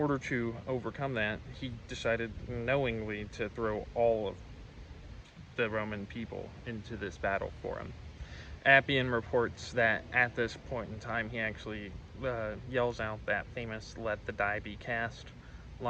to overcome that, he decided knowingly to throw all of the Roman people into this battle for him. Appian reports that at this point in time, he actually yells out that famous "let the die be cast"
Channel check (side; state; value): both; identical; correlation 1.00